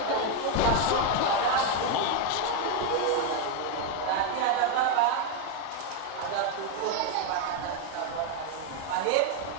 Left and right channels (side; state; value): both; different; correlation 0.02